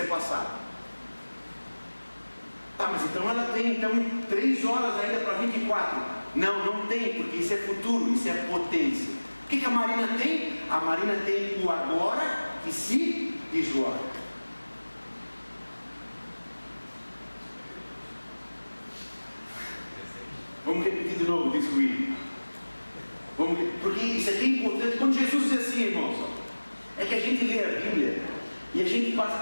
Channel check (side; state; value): both; inverted; correlation -1.00